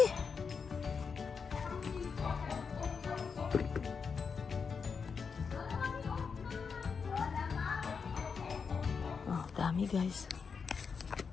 Oh, dami, guys.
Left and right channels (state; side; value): quieter; right; 5.7 dB